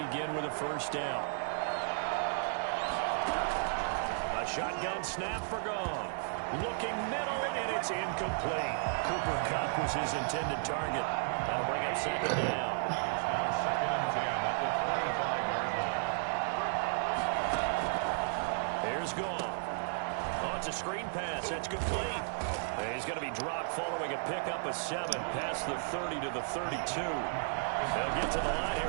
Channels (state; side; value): silent; left; digital silence